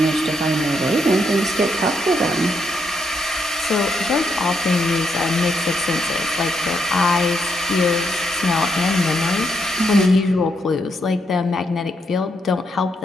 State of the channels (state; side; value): normal; both; correlation 0.78